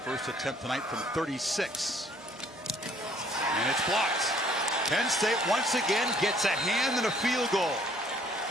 first attempt tonight from 36. And it's blocked. Penn State once again gets a hand and a field goal.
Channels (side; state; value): both; normal; correlation 0.60